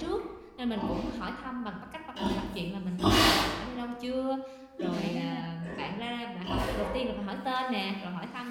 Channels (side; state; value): both; identical; correlation 1.00